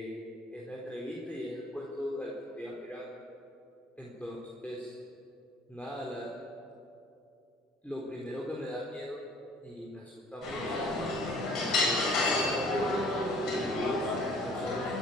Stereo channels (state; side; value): normal; both; correlation 0.55